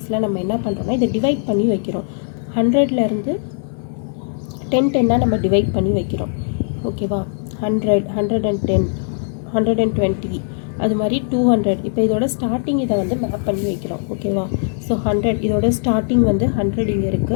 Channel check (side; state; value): right; silent; digital silence